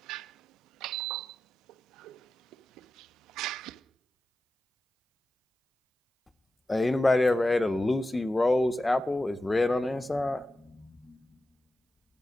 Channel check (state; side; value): normal; both; correlation 0.92